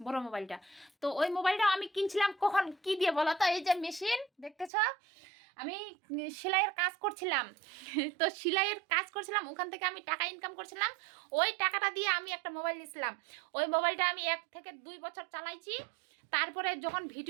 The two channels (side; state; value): left; drops out; at 4.7 s